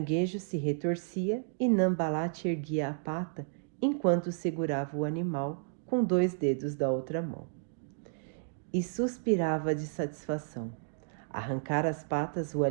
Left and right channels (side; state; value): left; silent; digital silence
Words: se retorcia e Nambalat erguia a pata enquanto segurava o animal com 2 dedos da outra mão. E suspirava de satisfação. Arrancar as patas o